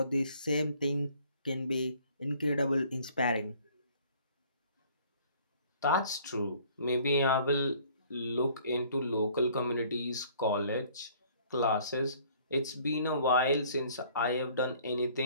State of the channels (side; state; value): both; inverted; correlation -0.56